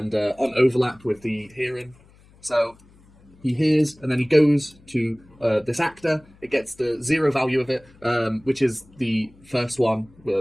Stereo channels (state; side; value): noise; left; hum, 28 dB below the sound